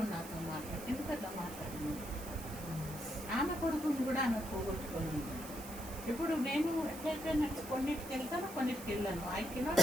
నాతో మాట్లాడి, ఎందుకంటే మాట్లాడింది. ఆమె కొడుకుని కూడా ఆమె పోగొట్టుకోలేదు. ఇప్పుడు నేను ఎట్లయిపోయినట్టు కొన్నిటికి వెళ్తాను, కొన్నిటికి వెళ్ళాను. ఐ కెనాట్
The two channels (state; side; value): noise; right; hiss, 13 dB below the sound